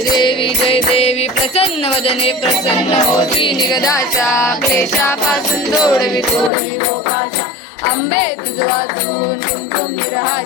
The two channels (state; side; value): drops out; right; at 6.5 s